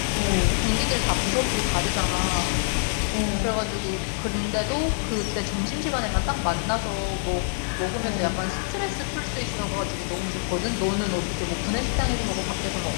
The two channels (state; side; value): silent; right; digital silence